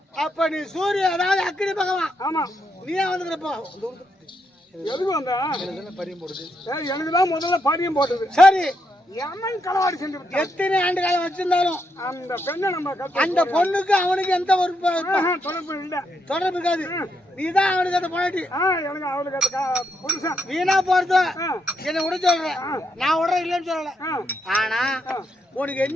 அப்ப நீ சூரிய அதாவது அக்கினி பகவான். ஆமா நீயே வந்துக்கிறப்போ எதுக்கு வந்தா எனக்கு தான் முதல்ல பரியம் போட்டது. சரி, எமன் களவாடி செஞ்சு விட்டான். எத்தனை ஆண்டு காலம் வச்சிருந்தாலும் அந்த பெண்ணை நம்ம அந்த பொண்ணுக்கு அவனுக்கு எந்த ஒரு தொடர்பு இல்ல, தொடர்பு இருக்காது. நீதான் அவனுக்கு அந்த பொண்டாட்டி. எனக்கு அவளுக்கு அந்த புருஷன் வீணா போறது என்ன விட சொல்ற. நான் விட இல்லைன்னு சொல்லல. ஆனா உனக்கு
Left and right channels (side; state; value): both; normal; correlation 0.79